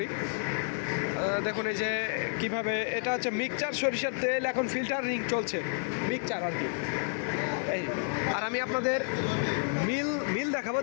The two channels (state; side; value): silent; right; 58 dB below the other